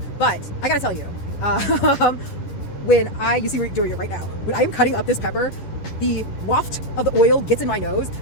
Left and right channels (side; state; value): right; late; 11 ms